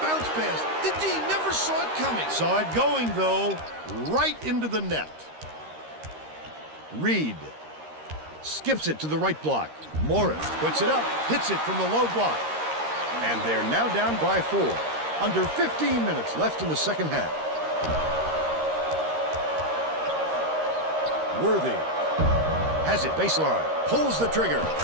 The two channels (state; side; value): late; left; 13 ms